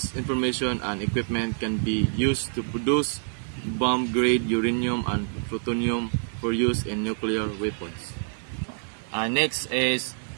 information and equipment can be used to produce bomb-grade uranium and plutonium for use in nuclear weapons. Next is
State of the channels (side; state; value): left; silent; 56 dB below the other